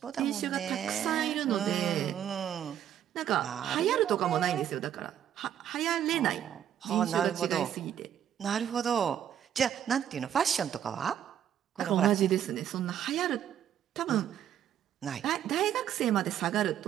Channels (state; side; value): quieter; left; 10.1 dB